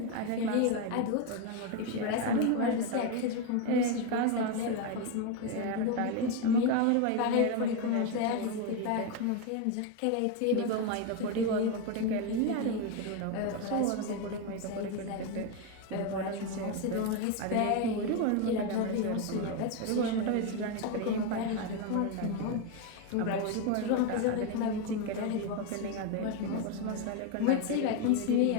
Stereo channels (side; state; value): both; different; correlation 0.02